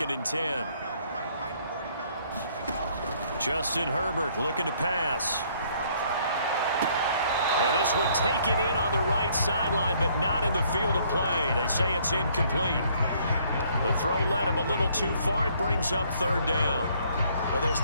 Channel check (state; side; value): inverted; both; correlation -0.64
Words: and 10. Justin Herbert looking to pass. And this one taken in on the right sideline, but not in the field of play. They say it's incomplete. The throw led him a little too far. It brings up 3rd down. Well, there's